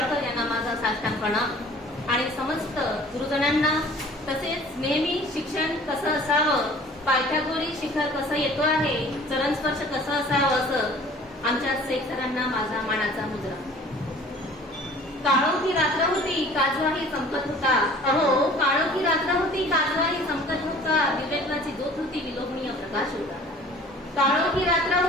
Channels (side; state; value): both; normal; correlation 0.49